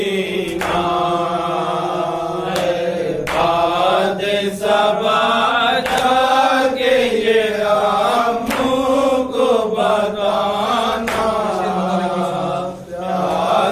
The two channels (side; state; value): both; identical; correlation 1.00